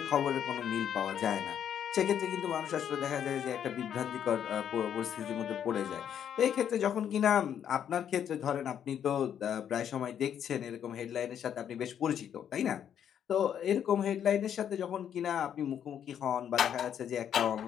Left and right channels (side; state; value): right; quieter; 9.1 dB